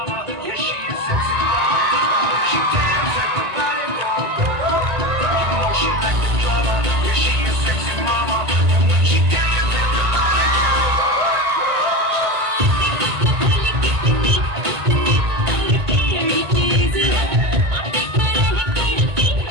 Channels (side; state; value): left; late; 1.9 ms